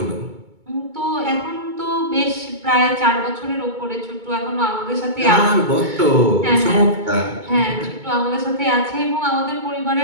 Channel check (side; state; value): left; late; 2.2 ms